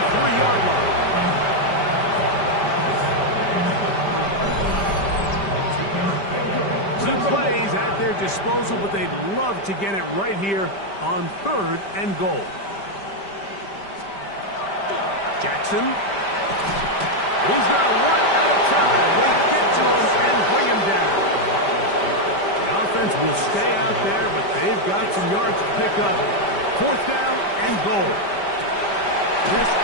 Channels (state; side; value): late; right; 5.1 ms